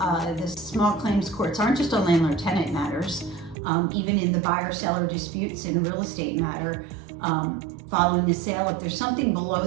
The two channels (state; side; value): drops out; left; at 3.6 s